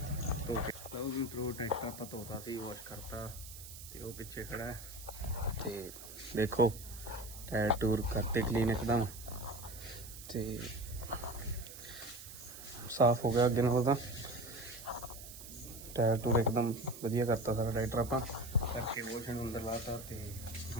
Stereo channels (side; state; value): right; noise; hiss, 13 dB below the sound